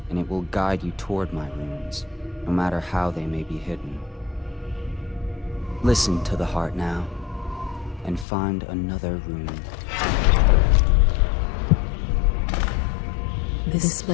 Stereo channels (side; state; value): right; drops out; at 8.2 s